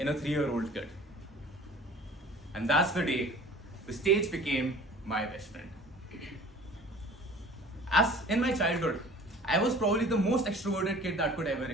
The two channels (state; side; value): normal; both; correlation 0.46